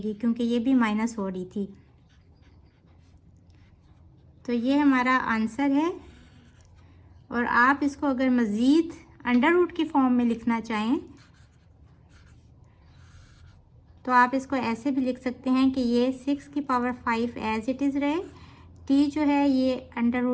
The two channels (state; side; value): identical; both; correlation 1.00